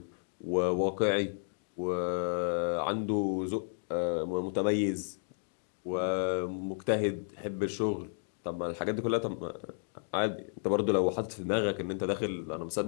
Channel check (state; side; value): silent; right; digital silence